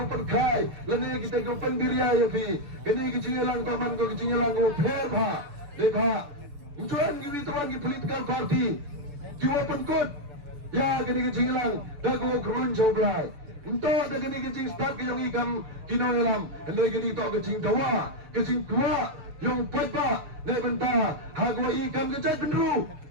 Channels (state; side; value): late; left; 6.9 ms